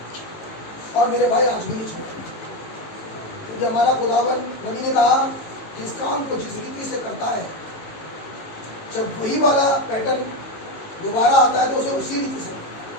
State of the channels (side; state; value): right; late; 18 ms